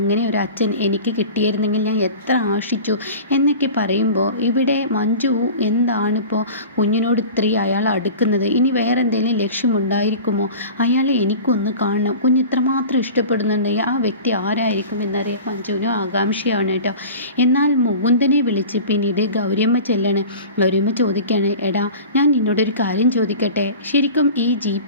ഒരു അച്ഛൻ എനിക്ക് കിട്ടിയിരുന്നെങ്കിൽ ഞാൻ എത്ര ആശിച്ചു എന്നൊക്കെ പറയുമ്പോൾ ഇവിടെ മഞ്ജു എന്താണിപ്പോൾ കുഞ്ഞിനോട് ഇത്രയും അയാൾ അടുക്കുന്നത്, ഇനി വേറെ എന്തെങ്കിലും ലക്ഷ്യമുണ്ടായിരിക്കുമോ, അയാളെ എനിക്കൊന്ന് കാണണം, കുഞ്ഞ് ഇത്രമാത്രം ഇഷ്ടപ്പെടുന്നുണ്ടെങ്കിൽ ആ വ്യക്തി ആരായിരിക്കും എന്നറിയാൻ മഞ്ജുവിനും ആകാംക്ഷയാണ് കേട്ടോ. എന്നാൽ മുകുന്ദനെ വിളിച്ച് പിന്നീട് ഗൗരിയമ്മ ചെല്ലാണ്. ഗൗരിയമ്മ ചോദിക്കുകയാണ്, എടാ ഞാൻ നിന്നോടൊരു കാര്യം ചോദിക്കട്ടെ, ശരിക്കും ഈ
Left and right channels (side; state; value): both; inverted; correlation -0.37